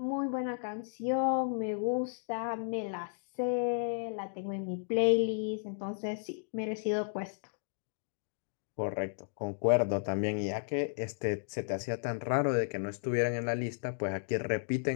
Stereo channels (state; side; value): silent; right; digital silence